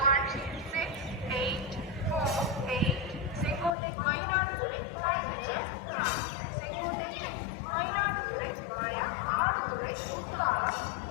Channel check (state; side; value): drops out; right; at 3.8 s